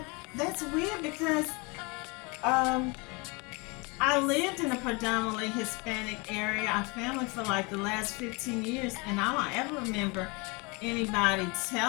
that's weird because um I lived in a predominantly Hispanic area. Our family for like the last 15 years, and I don't ever remember anybody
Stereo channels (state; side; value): quieter; right; 28.5 dB